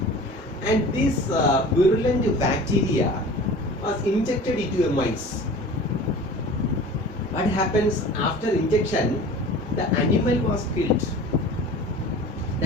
and this virulent bacteria was injected into a mice. What happens after injection? The animal was killed.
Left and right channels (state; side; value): normal; both; correlation 0.41